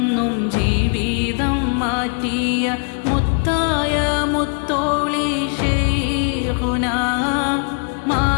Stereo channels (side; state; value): right; quieter; 39.9 dB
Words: ജീവിതം മാറ്റിയ മുത്തായ മുത്തോളി ശൈഖുനാ,